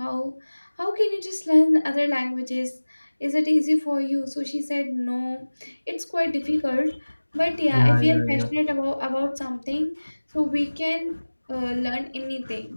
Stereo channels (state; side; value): inverted; both; correlation -1.00